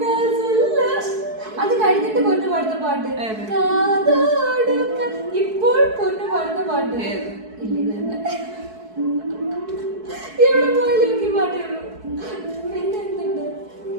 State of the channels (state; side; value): late; left; 4.6 ms